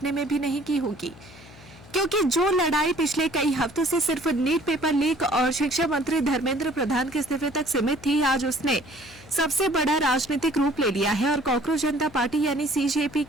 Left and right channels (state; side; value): noise; left; hum, 21 dB below the sound